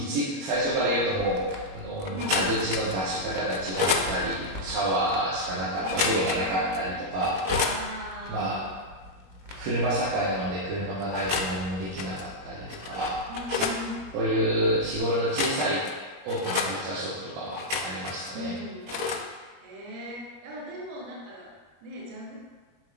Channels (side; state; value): left; late; 21 ms